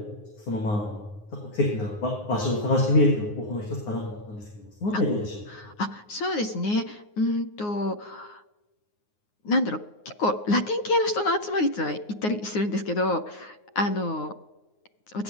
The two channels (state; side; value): late; right; 9.6 ms